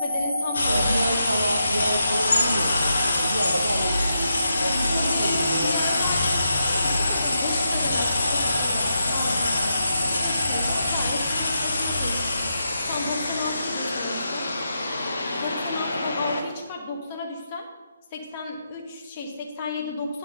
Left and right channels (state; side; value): inverted; both; correlation -0.84